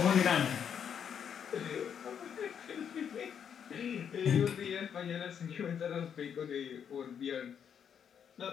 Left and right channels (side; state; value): right; quieter; 8.0 dB